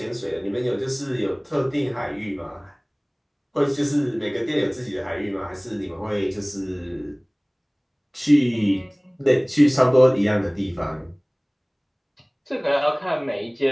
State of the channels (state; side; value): identical; both; correlation 1.00